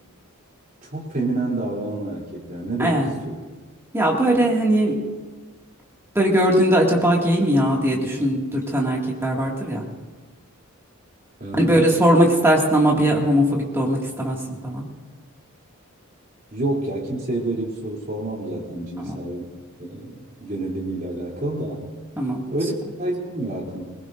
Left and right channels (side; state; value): both; normal; correlation 0.63